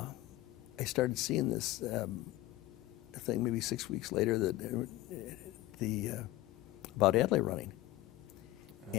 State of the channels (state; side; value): quieter; right; 16.7 dB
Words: started seeing this thing, maybe 6 weeks later, that about Adlai running.